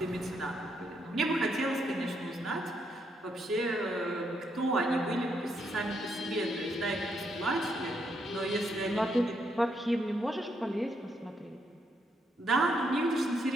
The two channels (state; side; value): normal; both; correlation 0.76